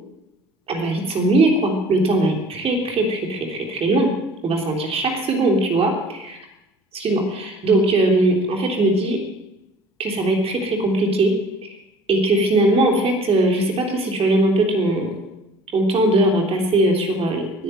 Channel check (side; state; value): both; normal; correlation 0.50